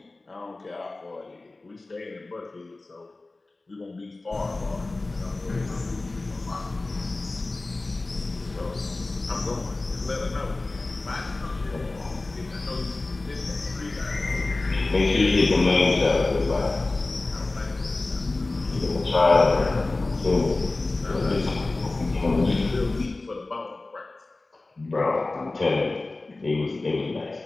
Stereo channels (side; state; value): right; quieter; 3.1 dB